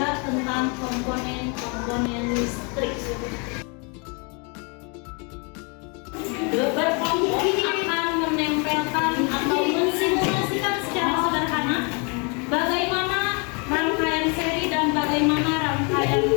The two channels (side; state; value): right; quieter; 33.5 dB